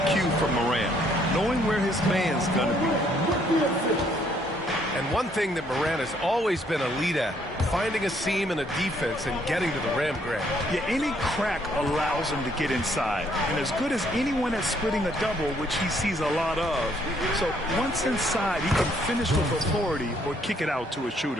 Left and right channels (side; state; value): both; normal; correlation 0.67